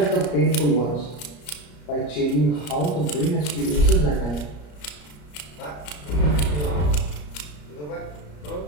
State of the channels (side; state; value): right; late; 34 ms